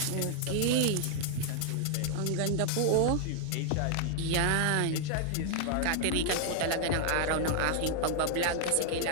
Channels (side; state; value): both; different; correlation 0.00